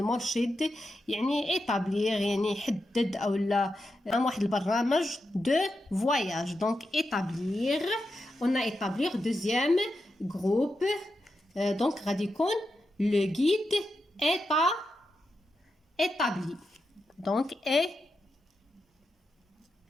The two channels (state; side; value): normal; both; correlation 0.88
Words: يعني établir يعني يحدد أو لا واحد البرنامج de voyage. Donc établir. On a établir deuxième groupe. Donc غادي يكون le guide établi. Donc